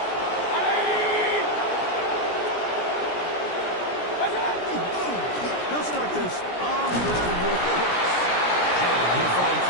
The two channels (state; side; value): late; right; 17 ms